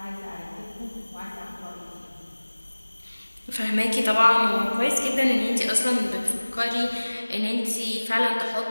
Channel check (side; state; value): both; inverted; correlation -1.00